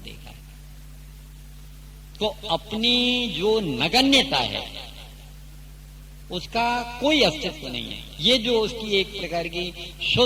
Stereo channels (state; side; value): identical; both; correlation 1.00